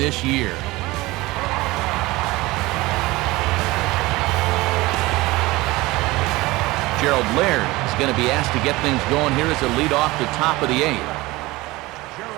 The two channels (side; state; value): left; quieter; 20.4 dB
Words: year. Gerald Laird is going to be asked to get things going here as a lead off the top of the 8th.